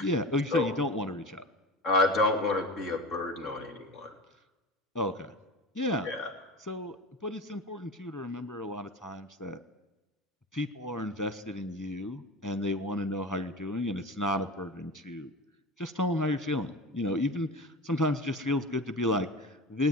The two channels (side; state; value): both; normal; correlation 0.31